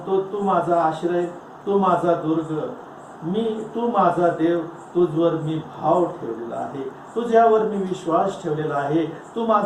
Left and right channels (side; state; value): both; identical; correlation 1.00